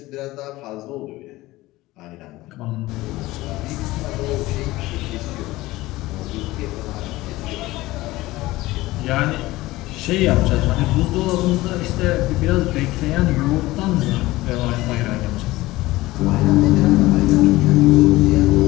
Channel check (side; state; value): right; quieter; 18.5 dB